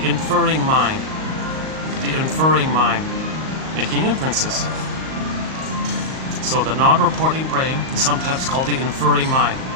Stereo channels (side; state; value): left; late; 38 ms